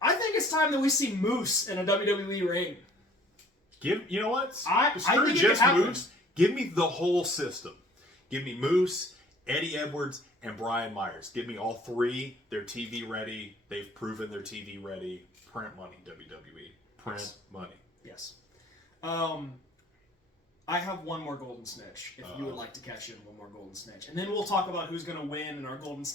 I think it's time that we see Moose in a WWE ring. You know what? I Screw think it could just happen. Moose. Give me the whole system. Give me Moose, Eddie Edwards, and Brian Myers. Give me all 3. They're TV ready. They've proven they're TV ready. Print money, WWE. Print money. Yes. I have one more Golden Snitch, if you would like to catch in one more Golden Snitch. And then we'll talk about who's going to win and our Golden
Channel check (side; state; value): both; normal; correlation 0.54